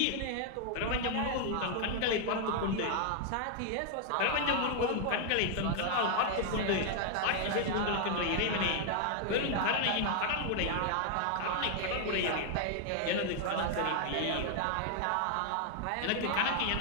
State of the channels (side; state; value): both; different; correlation 0.00